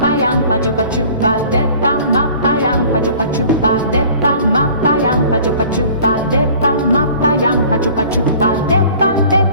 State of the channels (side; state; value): both; inverted; correlation -0.48